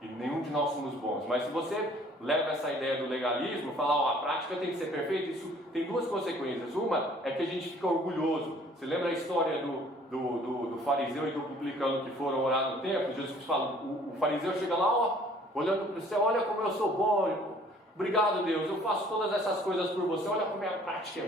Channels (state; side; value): normal; both; correlation 0.56